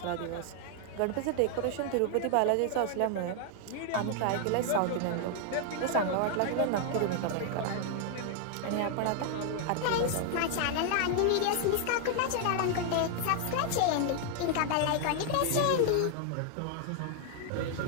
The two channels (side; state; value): both; different; correlation 0.00